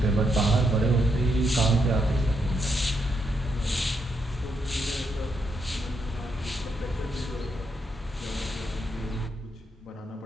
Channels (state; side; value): normal; both; correlation 0.79